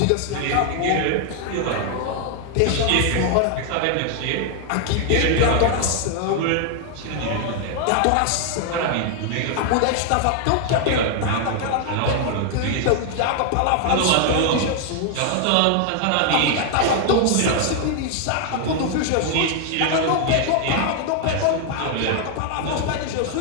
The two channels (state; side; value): different; both; correlation 0.00